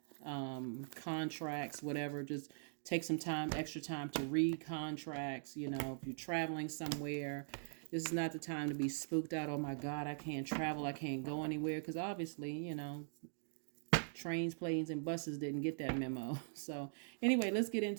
contracts, whatever. Just take some time, extra time to read contracts. If you're traveling somewhere, this is not the time to be spooked out. Oh my God, I can't travel. I can't go anywhere. Because obviously, trains, planes, and buses didn't get that memo. So anyway, let's get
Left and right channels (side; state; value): left; silent; digital silence